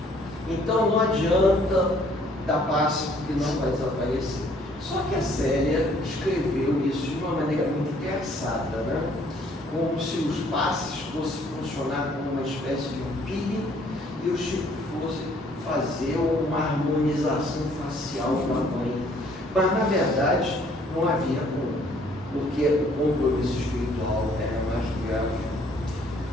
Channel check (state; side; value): normal; both; correlation 0.61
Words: Então não adianta dar passe porque não vai desaparecer. Só que a Célia escreveu isso de uma maneira muito engraçada, como se os passes fossem funcionar como uma espécie de um peeling e o Chico fosse fazer uma harmonização facial com a mãe. Mas, na verdade, não havia como, porque o compromisso espiritual era mais grave.